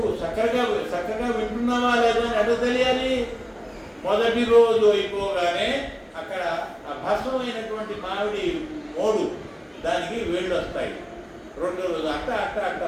చక్కగా వింటున్నావా లేదా అని ఎట్లా తెలియాలి? మొదటి రోజు అయిపోగానే అక్కడ ఆ భస్మమైనటువంటి మామిడి మోడు దానికి వేళ్ళు వస్తాయి. 2వ రోజు అట్ట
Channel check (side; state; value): both; identical; correlation 1.00